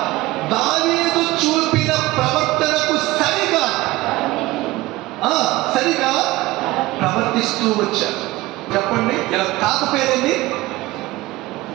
దావీదు చూపిన ప్రవర్తనకు సరిగా ప్రవర్తిస్తూ వచ్చారు. చెప్పండి, ఇలా తాత పేరేంది?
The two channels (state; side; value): quieter; left; 19.0 dB